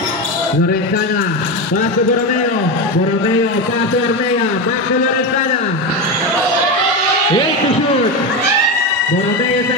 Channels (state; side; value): normal; both; correlation 0.16